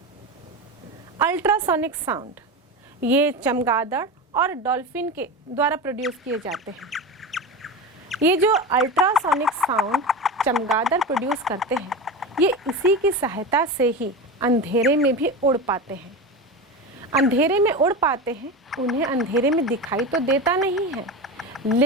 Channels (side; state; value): both; normal; correlation 0.24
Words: अल्ट्रासोनिक साउंड ये चमगादड़ और डॉल्फिन के द्वारा प्रोड्यूस किए जाते हैं। ये जो अल्ट्रासोनिक साउंड चमगादड़ प्रोड्यूस करते हैं, ये इसी की सहायता से ही अंधेरे में भी उड़ पाते हैं। अंधेरे में उड़ पाते हैं, उन्हें अंधेरे में दिखाई तो देता नहीं है,